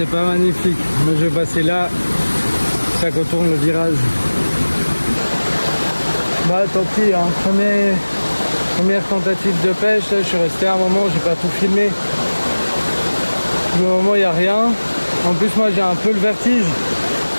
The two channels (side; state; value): both; inverted; correlation -1.00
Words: c'est pas magnifique. Moi je vais passer là, ça contourne le virage. Bah tant pis, hein. Première tentative de pêche, là, je suis resté un moment, j'ai pas tout filmé. Pour le moment il n'y a rien. En plus moi j'ai un peu le vertige.